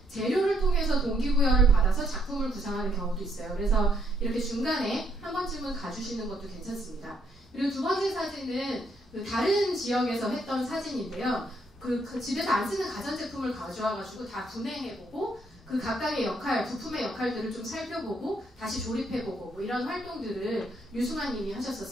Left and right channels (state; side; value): normal; both; correlation 0.72